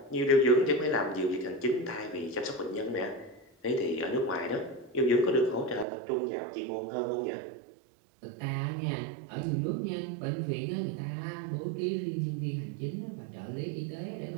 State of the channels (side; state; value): left; drops out; at 5.9 s